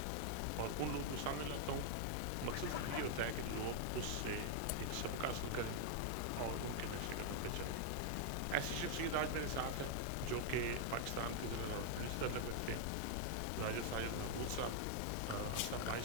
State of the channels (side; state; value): both; different; correlation -0.01